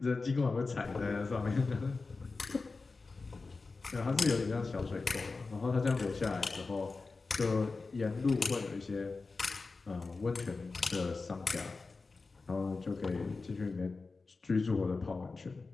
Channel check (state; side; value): quieter; right; 4.0 dB